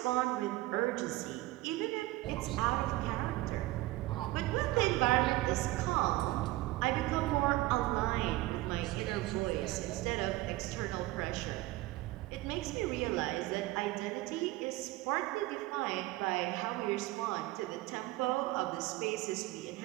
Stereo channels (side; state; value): left; quieter; 18.6 dB